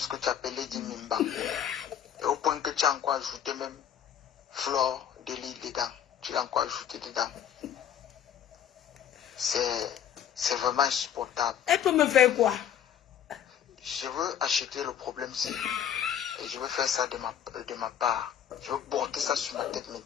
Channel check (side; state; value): right; quieter; 9.4 dB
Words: que tu appelles Lady Mimbang. Et au point que tu as encore ajouté même Flore de l'île dedans. Tu l'as encore ajouté dedans. C'est vraiment insupportable. Elle peut me faire quoi? Je veux acheter le problème-ci. Et je veux faire ça de ma part. Je veux porter ça sur ma tête